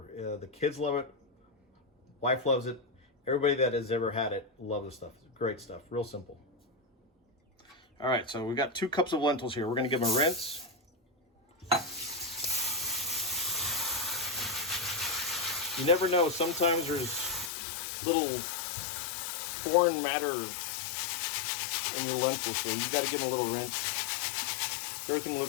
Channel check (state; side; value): drops out; right; at 17.5 s